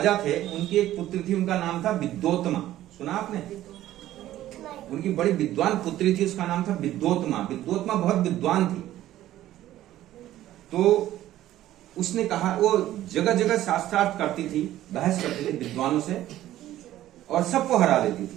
थे, उनकी एक पुत्री थी, उनका नाम था विद्योत्मा। सुना आपने? उनकी बड़ी विद्वान पुत्री थी, उसका नाम था विद्योत्मा। विद्योत्मा बहुत विद्वान थी। तो उसने कहा, वो जगह जगह शास्त्रार्थ करती थी, बहस करती थी विद्वानों से और सबको हरा देती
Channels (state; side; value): quieter; left; 13.8 dB